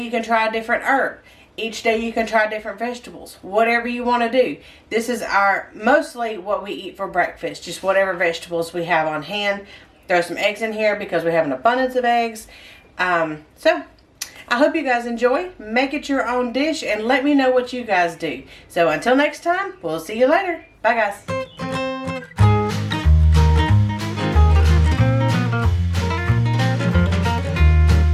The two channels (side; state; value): both; identical; correlation 1.00